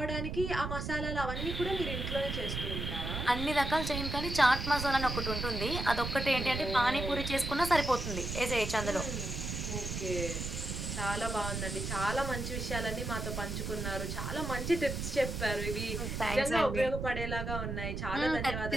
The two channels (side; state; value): right; noise; rumble, 4 dB below the sound